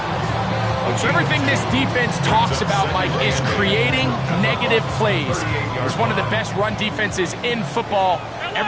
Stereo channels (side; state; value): both; identical; correlation 1.00